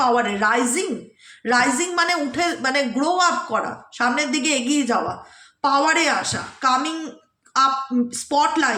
পাওয়ারে। রাইজিং মানে উঠে, মানে গ্রো আপ করা, সামনের দিকে এগিয়ে যাওয়া, পাওয়ারে আসা, কামিং আপ,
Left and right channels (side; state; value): both; identical; correlation 1.00